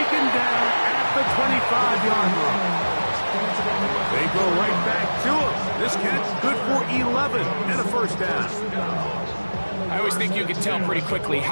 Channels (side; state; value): both; inverted; correlation -1.00